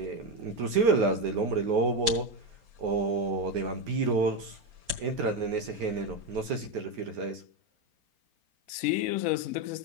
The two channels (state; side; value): late; left; 4.3 ms